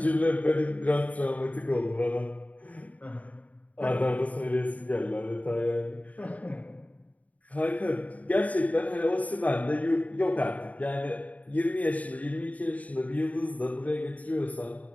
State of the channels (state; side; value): late; right; 0.071 ms